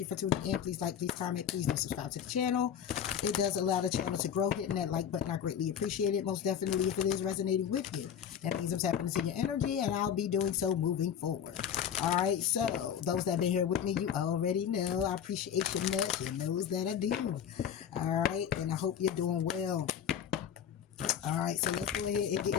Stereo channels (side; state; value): right; quieter; 8.7 dB